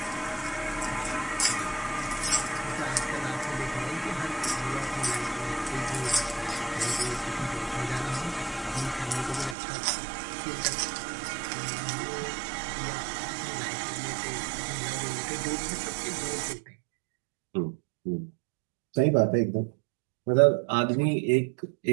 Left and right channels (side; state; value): left; drops out; at 9.6 s